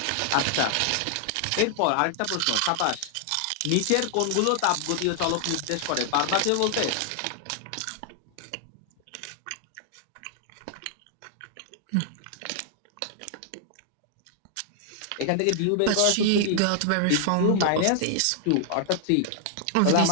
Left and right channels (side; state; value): both; different; correlation 0.00